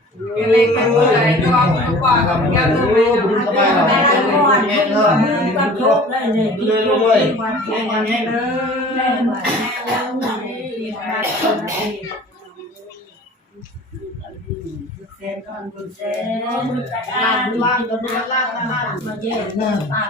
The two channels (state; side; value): normal; both; correlation 0.44